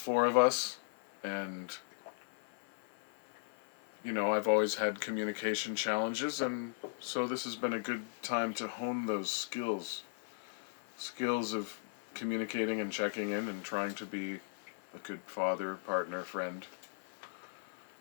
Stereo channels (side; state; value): right; silent; 53 dB below the other